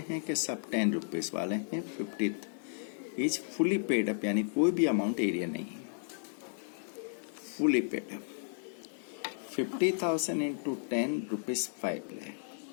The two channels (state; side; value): silent; right; 55 dB below the other